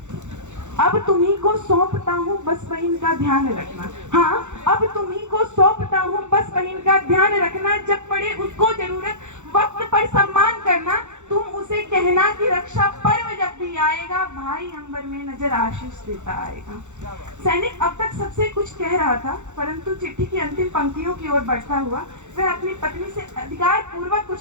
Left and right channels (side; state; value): left; late; 0.84 ms